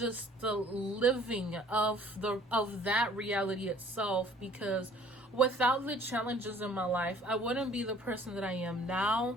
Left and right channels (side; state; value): both; normal; correlation 0.54